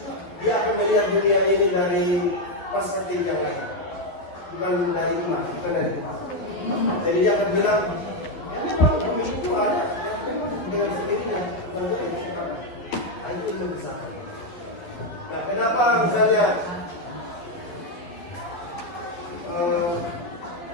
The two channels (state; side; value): late; right; 11 ms